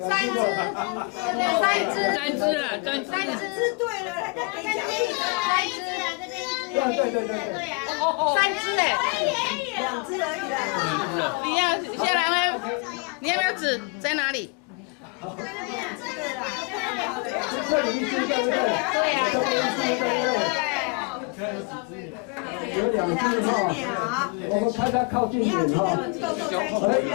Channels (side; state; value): right; quieter; 31.8 dB